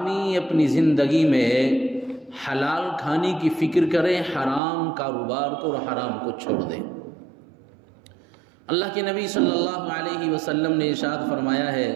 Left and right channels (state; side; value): drops out; left; at 4.6 s